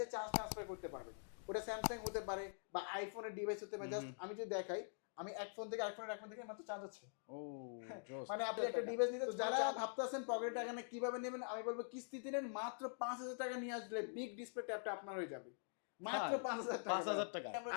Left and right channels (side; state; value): right; silent; digital silence